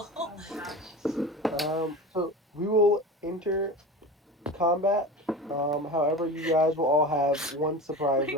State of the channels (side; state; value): both; normal; correlation 0.31